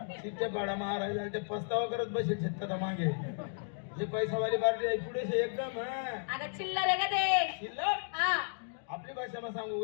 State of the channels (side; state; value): right; silent; digital silence